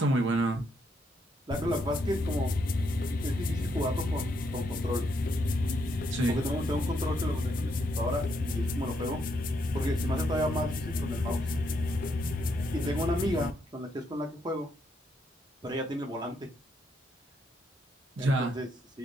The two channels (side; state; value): both; normal; correlation 0.76